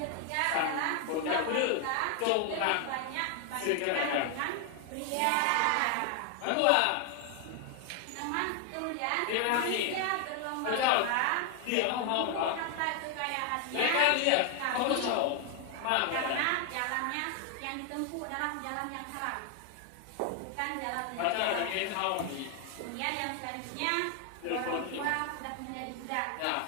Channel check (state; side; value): different; both; correlation 0.00